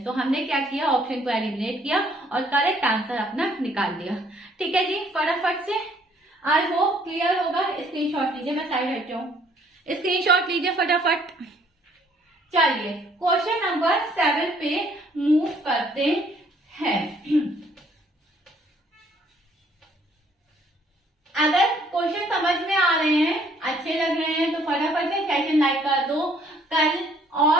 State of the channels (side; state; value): both; normal; correlation 0.63